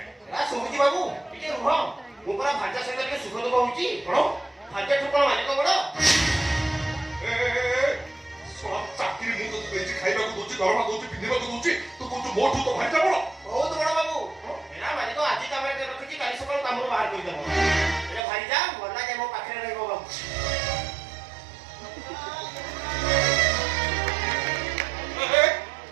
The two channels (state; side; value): drops out; left; at 18.2 s